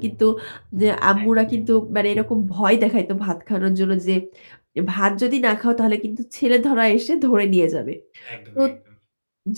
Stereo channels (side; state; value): both; inverted; correlation -1.00